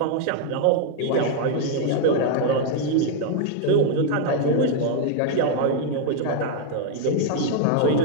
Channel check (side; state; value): both; different; correlation 0.00